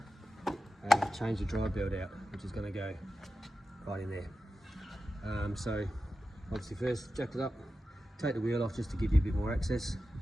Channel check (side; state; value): both; normal; correlation 0.92